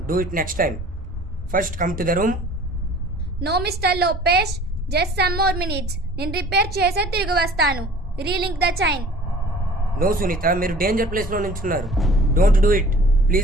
do it next time. First come to the room. No mister Lopez, just some more minutes. నేను repair చేసే తిరిగి వస్తాను. Relink the chain. No Sunita, మీరు danger place లో నించున్నారు. Don't do it.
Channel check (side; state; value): both; normal; correlation 0.47